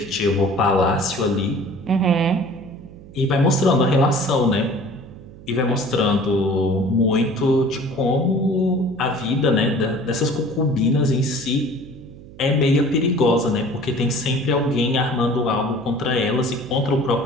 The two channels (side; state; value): right; noise; hum, 19 dB below the sound